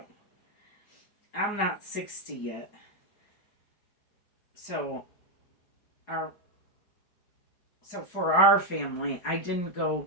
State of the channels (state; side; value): late; right; 4.8 ms